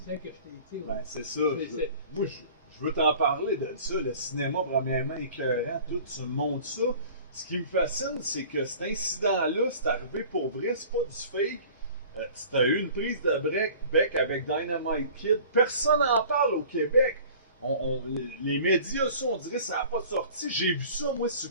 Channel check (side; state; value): both; inverted; correlation -0.46